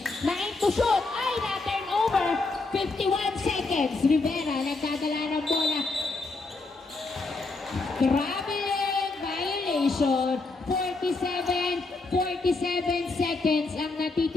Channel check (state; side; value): quieter; right; 3.6 dB